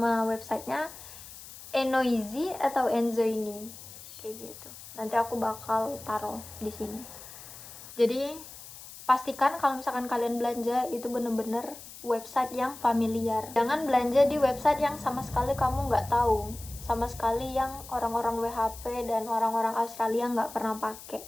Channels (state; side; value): noise; left; hiss, 15 dB below the sound